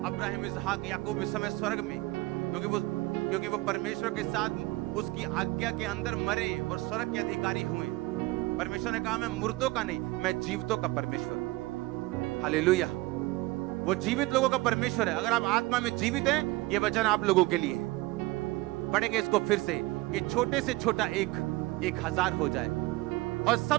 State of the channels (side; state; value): left; quieter; 21.0 dB